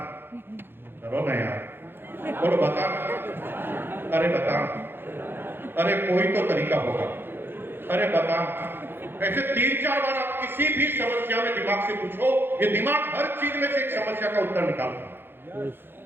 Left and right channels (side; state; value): left; late; 0.10 ms